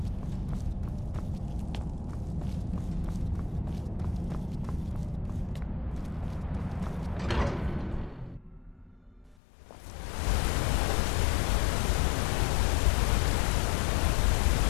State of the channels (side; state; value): right; drops out; at 9.3 s